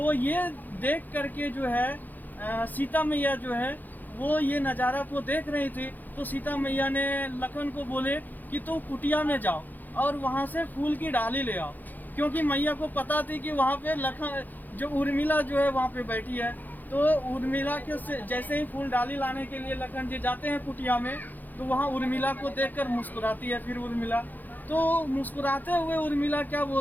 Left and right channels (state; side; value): late; right; 0.085 ms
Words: ये देख करके जो है सीता मैया जो है वो ये नज़ारा को देख रही थी। तो सीता मैया ने लखन को बोले कि तो कुटिया में जाओ और वहाँ से फूल की डाली ले आओ, क्योंकि मैया को पता थी कि वहाँ पे लखन जो उर्मिला जो है वहाँ पे बैठी है। तो उर्मिला के जैसे ही फूल डाली लाने के लिए लखन जी जाते हैं कुटिया में, तो वहाँ उर्मिला को देखकर मुस्कुराती है। फिर उर्मिला तो मुस्कुराते हुए उर्मिला क्या